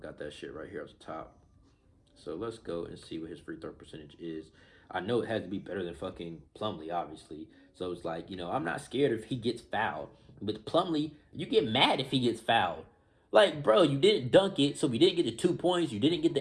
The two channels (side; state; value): both; identical; correlation 1.00